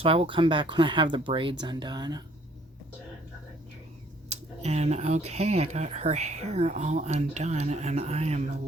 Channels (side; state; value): both; normal; correlation 0.61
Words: I will come back when I have the braids undone. And okay, I got her hair all undone and I am